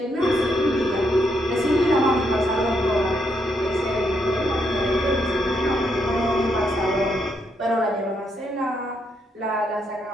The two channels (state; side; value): normal; both; correlation 0.77